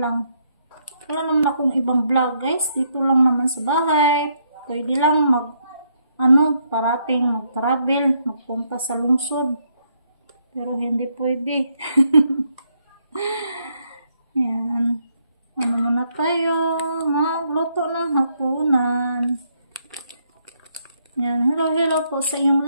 Wala naman akong ibang vlog guys, dito lang naman sa bahay. Pwede lang parating mag-travel, magpunta sa lungsod. Pero hindi pwede. Yan. Muna tayo, magluto ng hapunan. Yan, hello po sa inyong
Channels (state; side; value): inverted; both; correlation -0.74